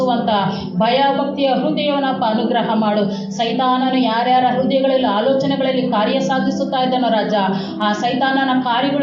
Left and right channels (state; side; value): identical; both; correlation 1.00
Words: ಭಯ ಭಕ್ತಿಯ ಹೃದಯವನ್ನಪ್ಪ ಅನುಗ್ರಹ ಮಾಡು. ಸೈತಾನನು ಯಾರ್ಯಾರ ಹೃದಯಗಳಲ್ಲಿ ಆಲೋಚನೆಗಳಲ್ಲಿ ಕಾರ್ಯ ಸಾಧಿಸುತ್ತಾ ಇದ್ದಾನೋ ರಾಜ ಆ ಸೈತಾನನ